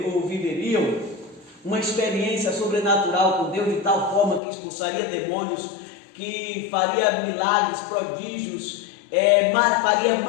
ou viveriam uma experiência sobrenatural com Deus de tal forma que expulsaria demônios, que faria milagres, prodígios, faria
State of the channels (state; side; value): drops out; right; at 4.4 s